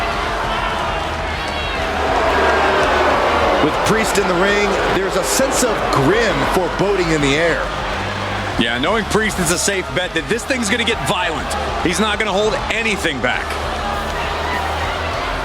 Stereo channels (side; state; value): both; identical; correlation 1.00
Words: With Priest in the ring, there's a sense of grim foreboding in the air. Yeah, knowing Priest is a safe bet that this thing's going to get violent. He's not going to hold anything back.